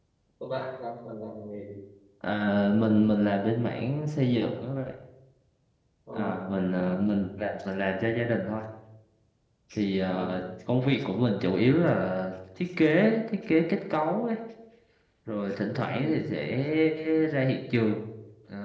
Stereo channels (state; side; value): identical; both; correlation 1.00